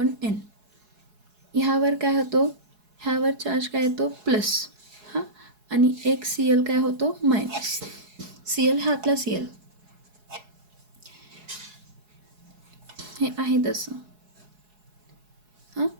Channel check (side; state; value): left; late; 4.7 ms